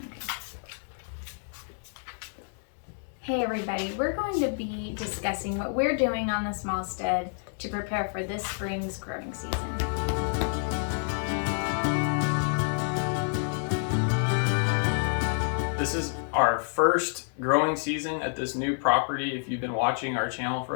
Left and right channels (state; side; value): silent; right; 59 dB below the other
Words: Hey everybody, we're going to be discussing what we're doing on the small stead to prepare for this spring's growing season. This is our first growing season at this new property. If you've been watching our channel